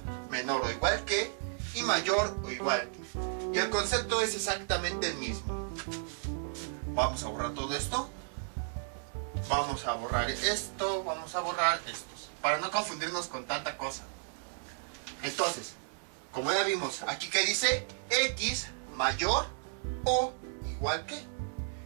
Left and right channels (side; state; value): left; silent; 55 dB below the other